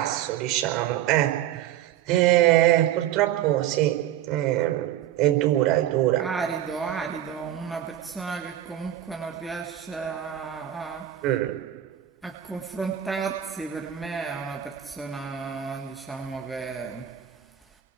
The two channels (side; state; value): left; quieter; 11.7 dB